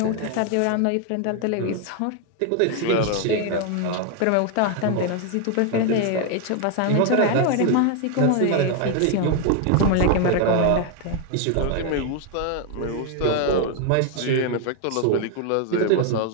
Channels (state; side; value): different; both; correlation 0.01